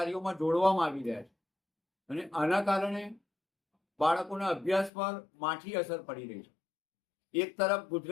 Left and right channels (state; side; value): drops out; right; at 4.9 s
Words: જોડવામાં આવી રહ્યા છે અને આના કારણે બાળકોના અભ્યાસ પર માઠી અસર પડી રહી છે. એક તરફ